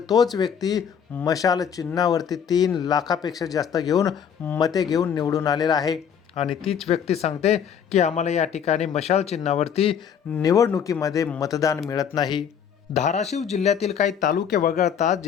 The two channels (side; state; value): right; quieter; 7.9 dB